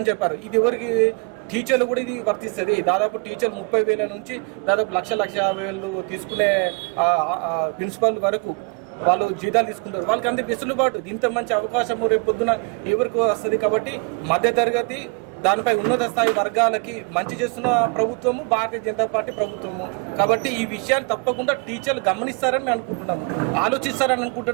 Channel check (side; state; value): left; quieter; 32.8 dB